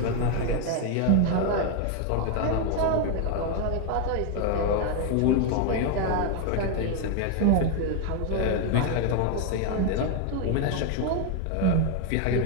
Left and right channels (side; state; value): both; different; correlation 0.01